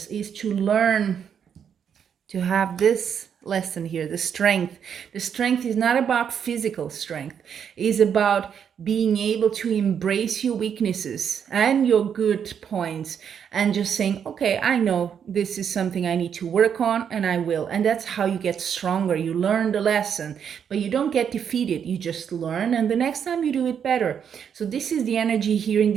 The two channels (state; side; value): quieter; left; 7.9 dB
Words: is to learn to have this lesson here, the strength. The strength is not about physical strength. It is about being able to embrace your weaknesses and your good points, and just saying, okay, I know this is something I need to work on, and I will. And that's how you get stronger. You learn the lesson, but you don't get defeated. You just learn, and the next time you do it better. So this is the energy here in